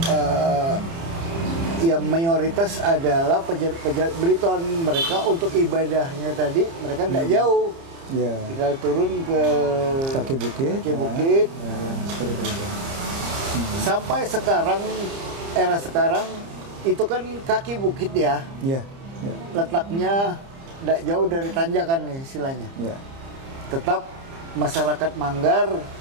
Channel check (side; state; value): left; late; 30 ms